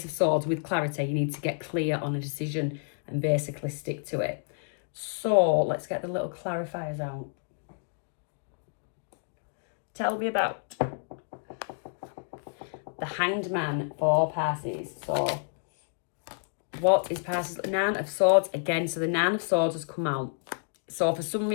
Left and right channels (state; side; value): silent; right; digital silence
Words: of Swords with clarity, you need to get clear on a decision and basically stick to it. So let's get the little clarifiers out. Tell me about the Hanged Man for Pisces. So what is Pisces? Nine of Swords again. So the Nine of Swords has come out. So for some